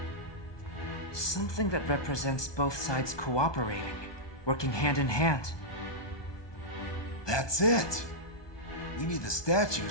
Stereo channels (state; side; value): late; right; 1.2 ms